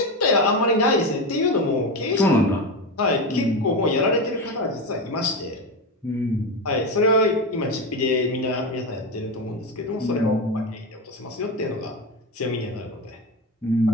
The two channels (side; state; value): both; normal; correlation 0.17